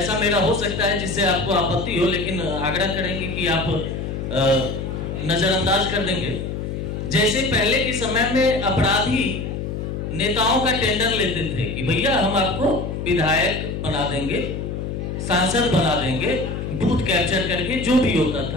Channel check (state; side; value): noise; left; hum, 4 dB below the sound